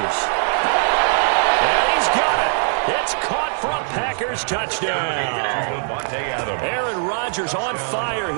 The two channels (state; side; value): silent; left; digital silence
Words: And he's got it. It's caught for a Packers touchdown. Aaron Rodgers on fire,